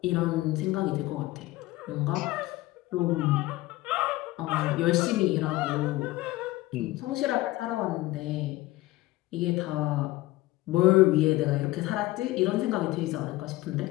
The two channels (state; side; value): quieter; right; 18.3 dB